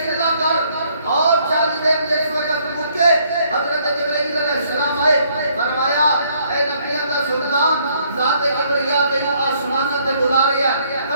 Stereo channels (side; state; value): both; inverted; correlation -0.67